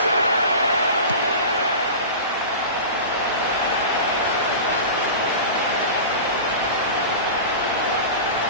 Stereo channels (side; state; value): both; inverted; correlation -0.31